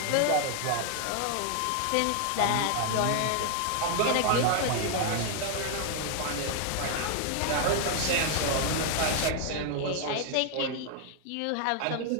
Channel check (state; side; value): different; both; correlation 0.00